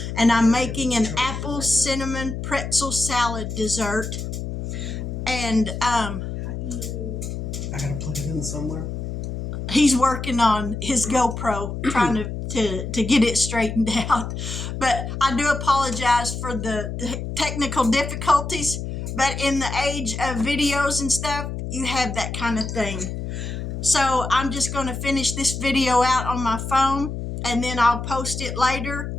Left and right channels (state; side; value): noise; left; hum, 5 dB below the sound